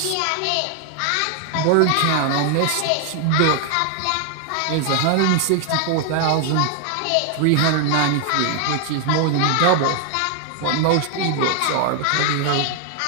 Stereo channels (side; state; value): both; different; correlation 0.00